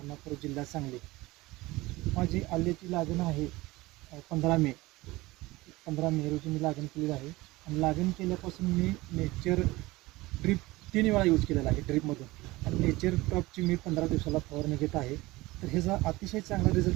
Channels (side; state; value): left; quieter; 20.2 dB